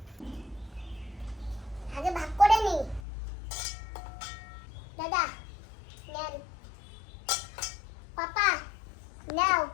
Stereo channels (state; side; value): drops out; right; at 3.0 s